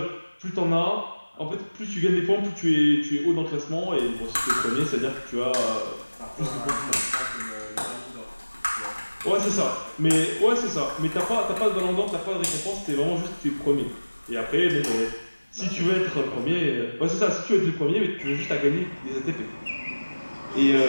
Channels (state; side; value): inverted; both; correlation -1.00